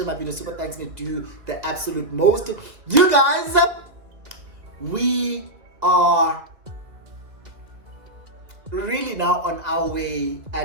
my video. Super thanks, me do the absolute most. You guys, we are really now on our way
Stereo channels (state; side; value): late; left; 2.3 ms